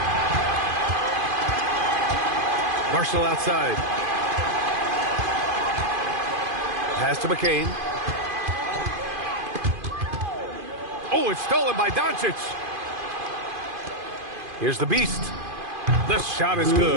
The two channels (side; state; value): left; late; 2.5 ms